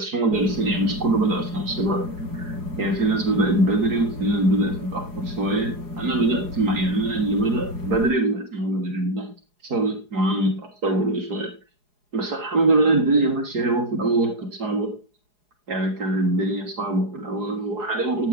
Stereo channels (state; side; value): late; left; 4.8 ms